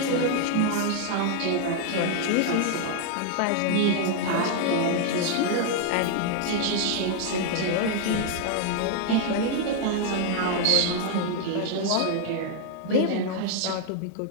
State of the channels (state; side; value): different; both; correlation 0.00